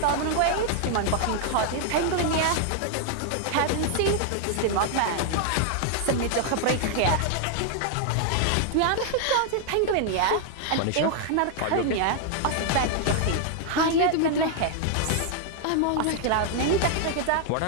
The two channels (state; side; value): different; both; correlation 0.00